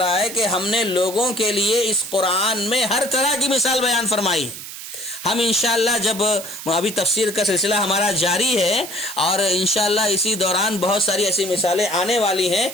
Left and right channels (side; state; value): right; noise; hiss, 11 dB below the sound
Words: ہے کہ ہم نے لوگوں کے لیے اس قرآن میں ہر طرح کی مثال بیان فرمائی ہے، ہم انشاءاللہ جب ابھی تفسیر کا سلسلہ ہمارا جاری ہے اور انشاءاللہ اسی دوران بہت ساری ایسی مثالیں آنے والی ہیں